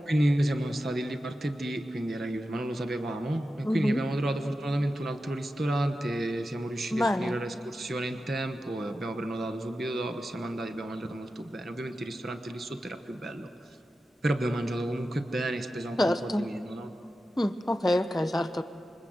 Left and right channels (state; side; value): normal; both; correlation 0.92